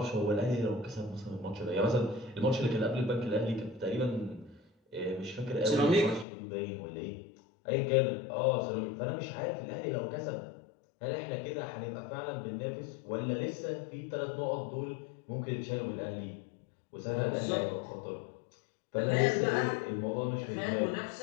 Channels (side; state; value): right; drops out; at 6.2 s